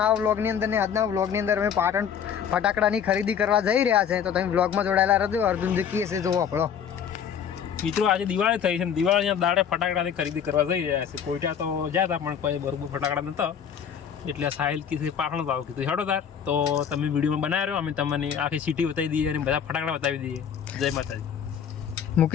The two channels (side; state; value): right; quieter; 8.0 dB